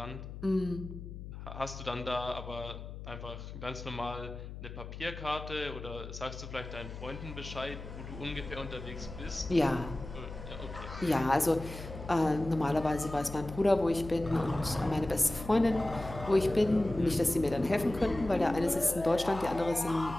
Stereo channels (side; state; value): left; noise; hum, 11 dB below the sound